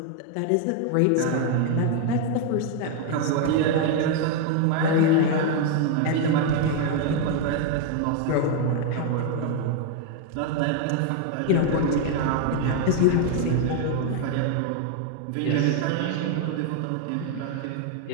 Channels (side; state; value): both; different; correlation 0.01